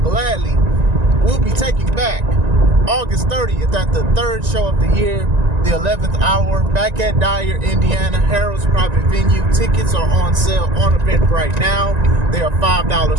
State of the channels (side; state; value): left; late; 1.9 ms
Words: will be taking back August 30th at the third show of the year, the 11th hour, back at Dyer, Indiana, Harold's private venue. Tickets are on sale on event right now. They are